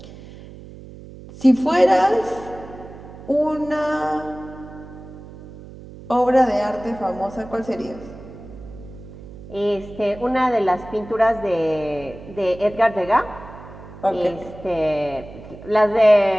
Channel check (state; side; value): noise; right; hum, 16 dB below the sound